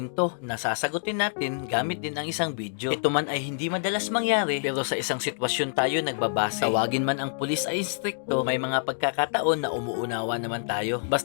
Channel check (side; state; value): right; silent; digital silence